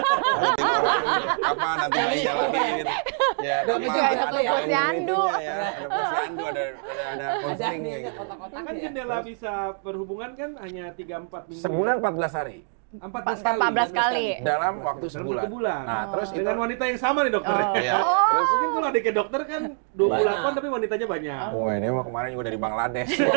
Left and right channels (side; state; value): left; silent; 62 dB below the other